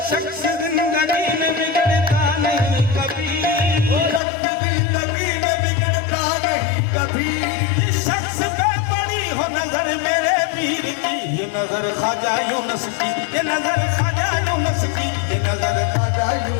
शख्स जिंदगी में बिगड़ता नहीं कभी, वो शख्स जिंदगी में बिगड़ता नहीं कभी। इस शख्स पे पड़ी हो नजर मेरे पीर की, ये नजर ख्वाजा यूनुस की, ये नजर ख्वाजा यूनुस की, ये नजर ख्वाजा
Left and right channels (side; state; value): right; drops out; at 4.2 s